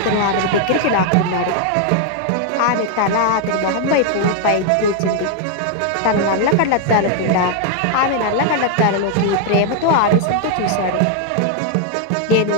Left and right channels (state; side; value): different; both; correlation 0.00